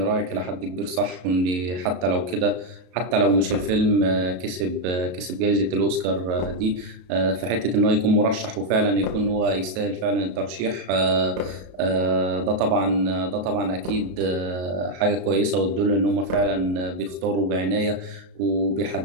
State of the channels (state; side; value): late; left; 33 ms